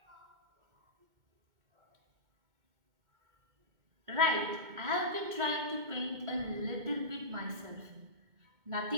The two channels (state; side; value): late; left; 2.2 ms